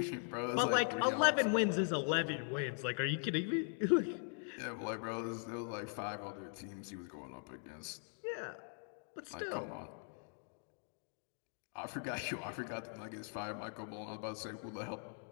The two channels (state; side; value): silent; right; 51 dB below the other